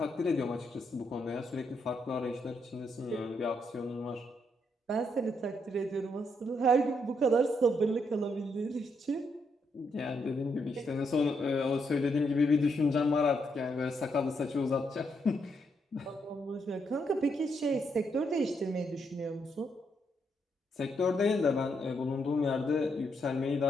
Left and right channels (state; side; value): normal; both; correlation 0.77